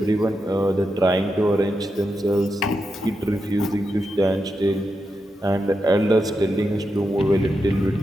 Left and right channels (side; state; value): both; normal; correlation 0.87